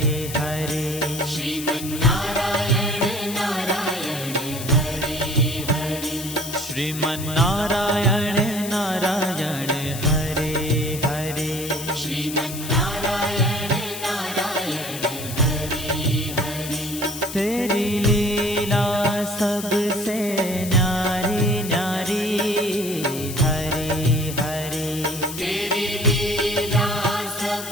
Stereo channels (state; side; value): noise; left; hiss, 9 dB below the sound